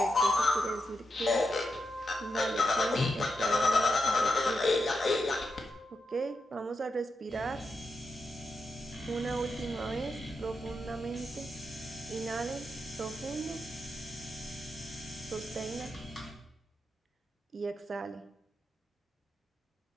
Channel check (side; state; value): both; normal; correlation 0.86